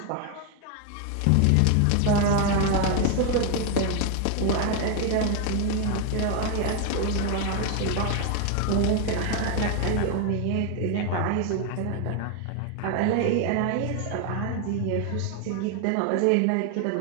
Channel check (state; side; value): different; both; correlation 0.01